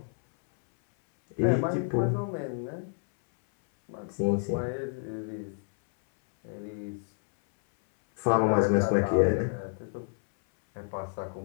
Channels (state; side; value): silent; right; 59 dB below the other